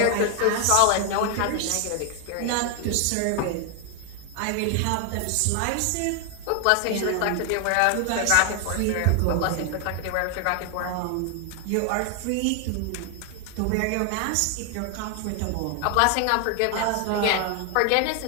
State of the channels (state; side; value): different; both; correlation 0.00